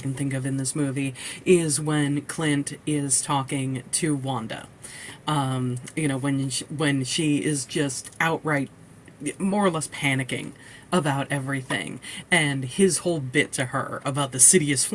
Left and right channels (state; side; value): identical; both; correlation 1.00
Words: think of in this movie is when Clint is talking to Wanda. When she is just outright more or less panicking about everything, and his whole bit to her about the city is